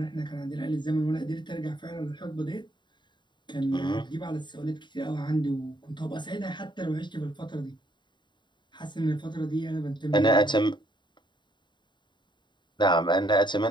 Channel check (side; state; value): right; late; 0.22 ms